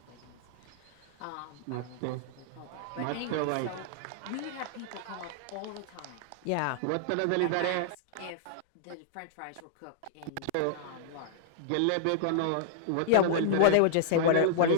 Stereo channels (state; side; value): different; both; correlation -0.01